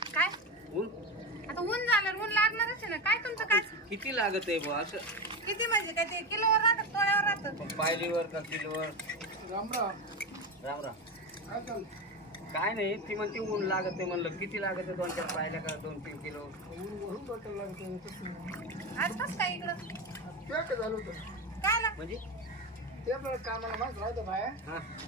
काय ऊन? आता ऊन झालं ऊन लागणारच आहे ना. काय तुमचं काय किती लागत आहे बुवा असं? किती म्हणजे काय ते किलोवर राहतं तोळ्यावर राहतं? पायलीवर का किलोवर? राम राम. राम राम. काय चाललं? काय नाही ती म्हणते ऊन लागत आहे म्हणलं किती लागत आहे 2-4 पायल्या का 2-3 किलो? वरून बॉटल लागतं. आज कसं काय इकडं काय झालं होतं? काय ना म्हणजे ते आपल्याला कामाला माणसं राहतं बाया. हा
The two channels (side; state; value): both; normal; correlation 0.18